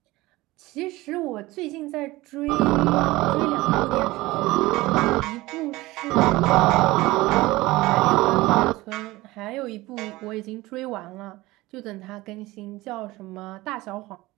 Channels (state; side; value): quieter; left; 19.6 dB